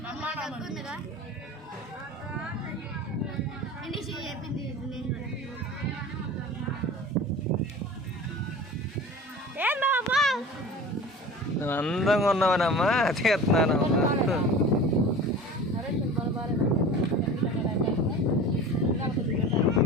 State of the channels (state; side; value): normal; both; correlation 0.37